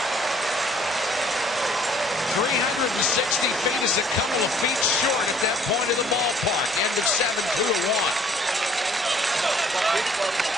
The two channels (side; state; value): both; normal; correlation 0.59